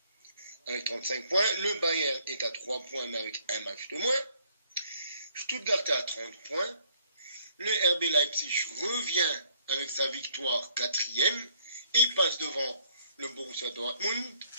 avec 35 points. Le Bayern est à 3 points mais avec un match de moins. Stuttgart est à 30 points. Le RB Leipzig revient avec sa victoire 4e et passe devant le Borussia Dortmund.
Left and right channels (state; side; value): inverted; both; correlation -0.64